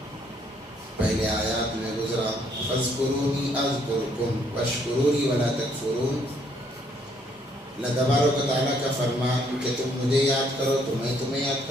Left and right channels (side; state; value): both; normal; correlation 0.68